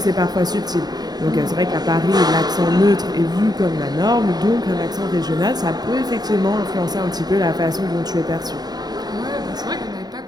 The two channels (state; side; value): late; left; 0.19 ms